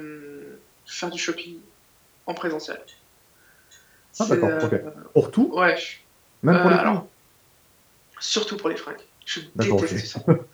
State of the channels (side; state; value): both; identical; correlation 1.00